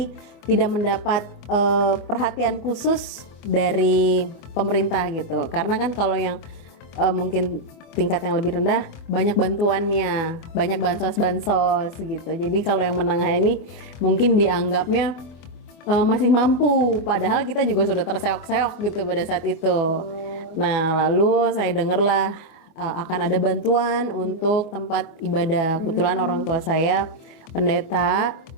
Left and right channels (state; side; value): late; right; 24 ms